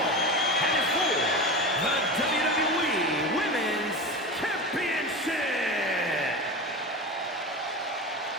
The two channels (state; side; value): normal; both; correlation 0.27